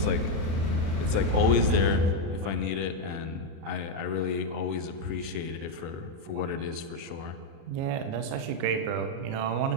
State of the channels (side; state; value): left; late; 37 ms